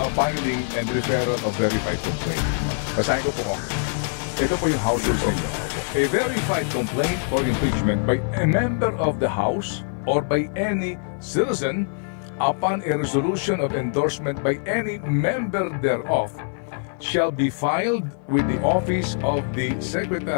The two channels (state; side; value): silent; right; 56 dB below the other